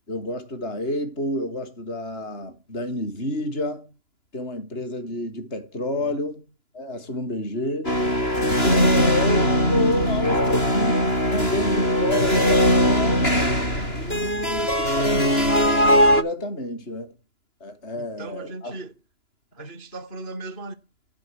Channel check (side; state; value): right; late; 2.9 ms